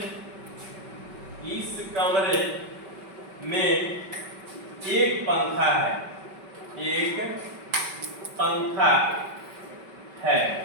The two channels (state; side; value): late; left; 5.2 ms